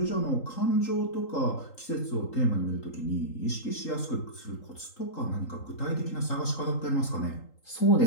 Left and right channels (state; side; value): late; right; 3.8 ms